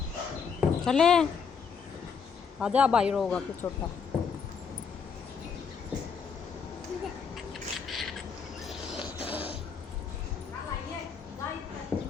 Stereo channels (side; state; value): right; quieter; 6.1 dB